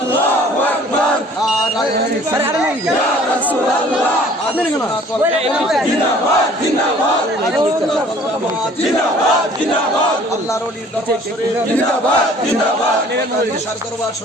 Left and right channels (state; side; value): normal; both; correlation 0.53